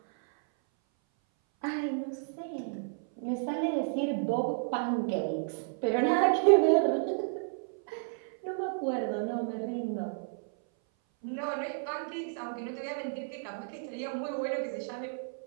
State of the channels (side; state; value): left; silent; 57 dB below the other